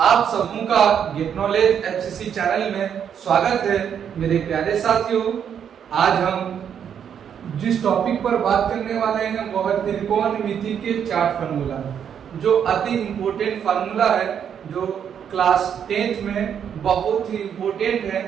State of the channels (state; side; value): quieter; left; 8.3 dB